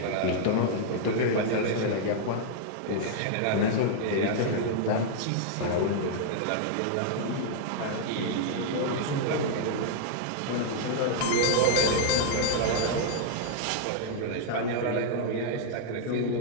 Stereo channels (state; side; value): different; both; correlation -0.01